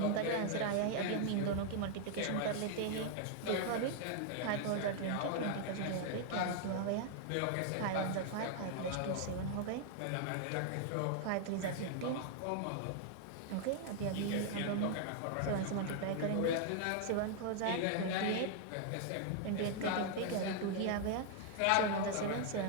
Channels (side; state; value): both; different; correlation 0.00